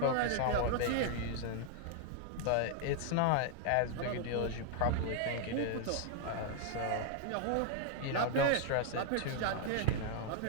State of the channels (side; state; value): both; different; correlation 0.00